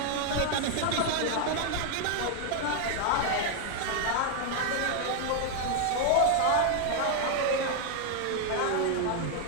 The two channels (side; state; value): both; different; correlation 0.00